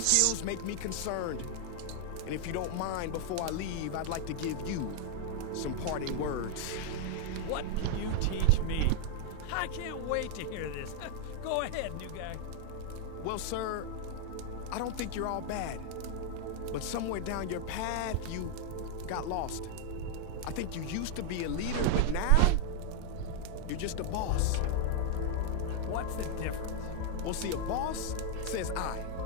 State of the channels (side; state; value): both; different; correlation 0.00